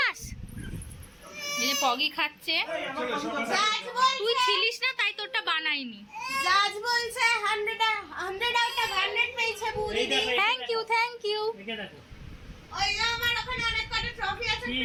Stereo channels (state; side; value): identical; both; correlation 1.00